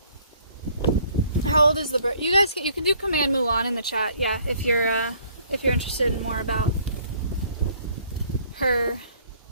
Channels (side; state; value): both; inverted; correlation -0.60